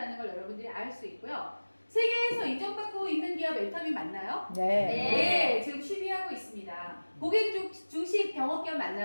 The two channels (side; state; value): both; inverted; correlation -1.00